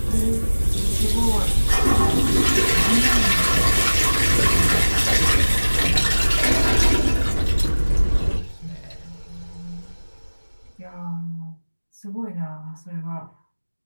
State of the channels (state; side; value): inverted; both; correlation -1.00